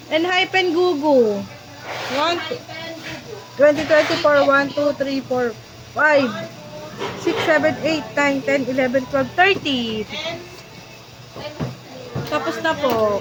Hypen Gugu. 1, Hypen Gugu. 2024, 1, 2, 3, 4, 5, 6, 7, 8, 9, 10, 11, 12, 13. And Tapos na po.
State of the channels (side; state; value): both; identical; correlation 1.00